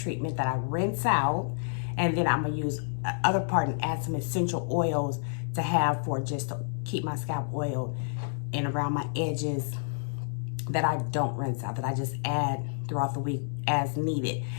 that I rinse out. And then I'm gonna use the other part and add some essential oils to have for just to keep my scalp oiled and around my edges that I don't rinse out, that I just add throughout the week as needed.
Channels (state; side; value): silent; right; digital silence